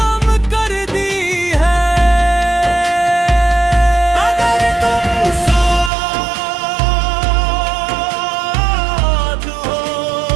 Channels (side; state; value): left; drops out; at 5.9 s